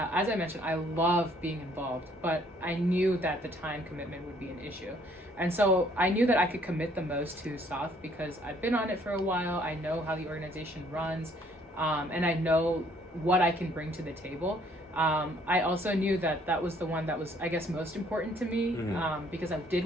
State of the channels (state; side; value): normal; both; correlation 0.62